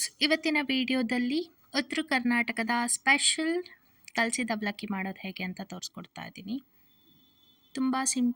ಇವತ್ತಿನ ವಿಡಿಯೋದಲ್ಲಿ ಉತ್ತರ ಕರ್ನಾಟಕದ ಸ್ಪೆಷಲ್ ಕಲಸಿದ ಅವಲಕ್ಕಿ ಮಾಡೋದು ಹೇಗೆ ಅಂತ ತೋರಿಸ್ಕೊಡ್ತಾ ಇದ್ದೀನಿ. ತುಂಬ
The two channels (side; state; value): both; identical; correlation 1.00